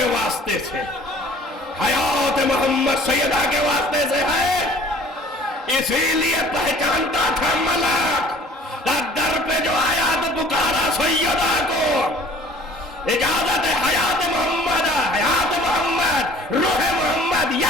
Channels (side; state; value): both; normal; correlation 0.50